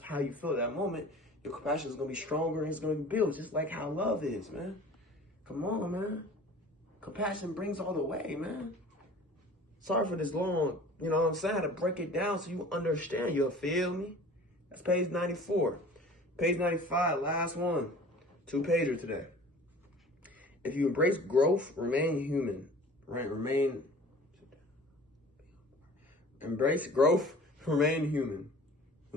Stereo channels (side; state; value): both; normal; correlation 0.44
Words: you feel at that moment, your compassion is going to be stronger and it's going to build, just like how love is, man. Come on, man. Compassion brings all the way, man. Sorry for this long, you know what I'm saying? I had to break it down so you understand. You'll feel me? That's page 94. Page 95, last one. 2-pager today. If you embrace growth, remain human. Right? Embrace growth, remain human.